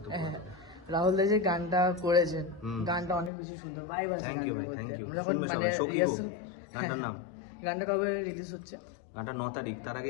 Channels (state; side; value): drops out; right; at 3.3 s